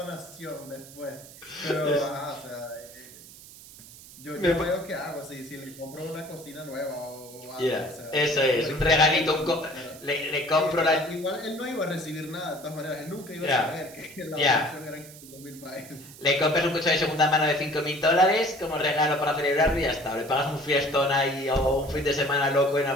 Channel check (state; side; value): noise; right; hiss, 18 dB below the sound